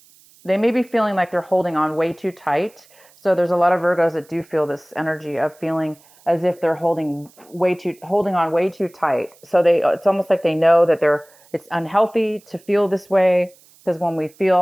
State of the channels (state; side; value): noise; right; hiss, 28 dB below the sound